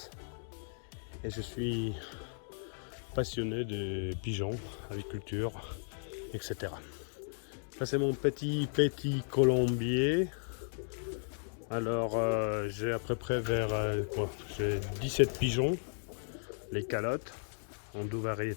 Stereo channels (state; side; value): silent; right; digital silence